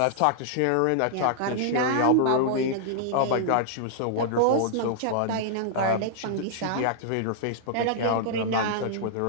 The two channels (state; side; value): different; both; correlation -0.01